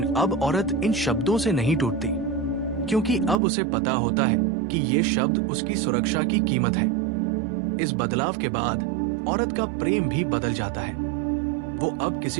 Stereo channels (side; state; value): left; drops out; at 3.4 s